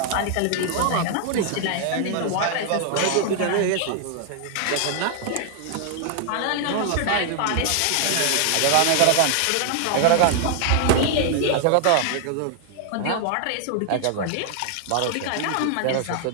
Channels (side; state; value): both; different; correlation 0.00